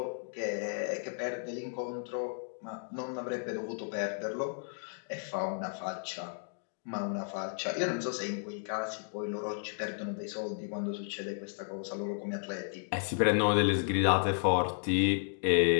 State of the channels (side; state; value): right; silent; digital silence